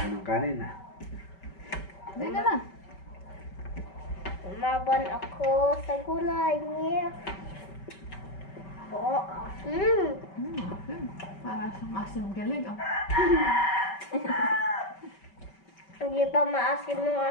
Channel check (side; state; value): right; late; 5.3 ms